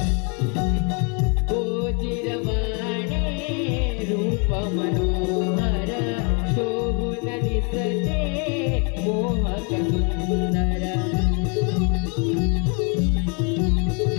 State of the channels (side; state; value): right; quieter; 35.3 dB